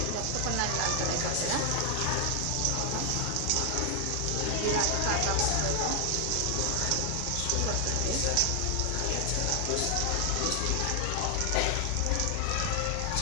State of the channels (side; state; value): both; different; correlation 0.00